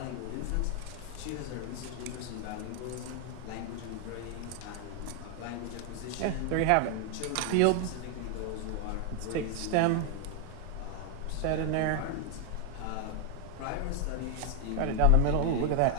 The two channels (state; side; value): different; both; correlation 0.00